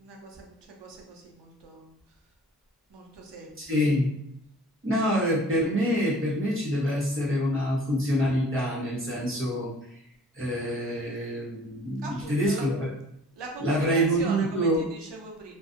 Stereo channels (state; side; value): normal; both; correlation 0.49